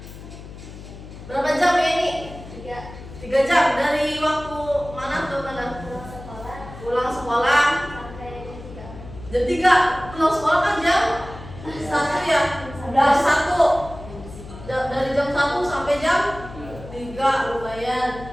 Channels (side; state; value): left; noise; hum, 14 dB below the sound